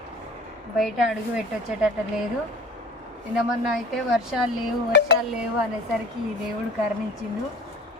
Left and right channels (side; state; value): both; normal; correlation 0.42